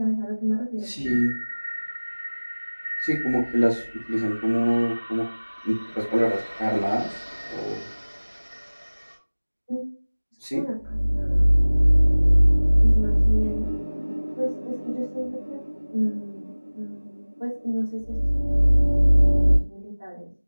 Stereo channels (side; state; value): both; inverted; correlation -1.00